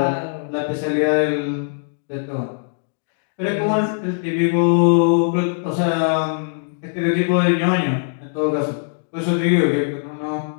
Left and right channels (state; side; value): silent; right; digital silence